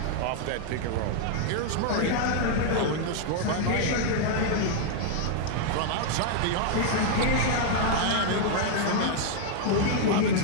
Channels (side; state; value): both; different; correlation 0.00